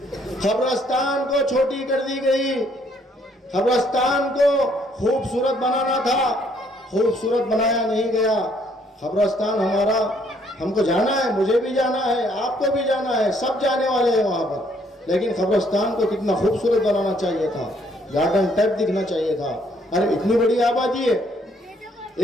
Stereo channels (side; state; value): both; normal; correlation 0.66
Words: खबरस्तान को छोटी कर दी गई। कब्रिस्तान को खूबसूरत बनाना था, खूबसूरत बनाया नहीं गया। कब्रिस्तान हमारा, हमको जाना है, मुझे भी जाना है, आपको भी जाना है, सब जाने वाले हैं वहाँ पर। लेकिन कब्रिस्तान को कितना खूबसूरत बनाना चाहिए था, गार्डन टाइप दिखना चाहिए था। अरे इतनी बड़ी आबादी है,